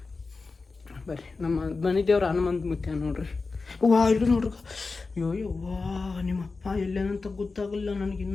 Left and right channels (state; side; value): quieter; right; 4.1 dB